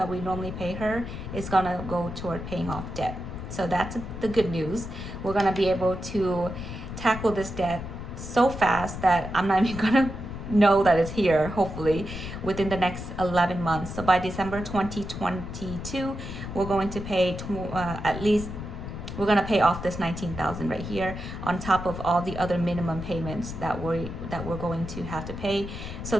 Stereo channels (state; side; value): noise; left; rumble, 8 dB below the sound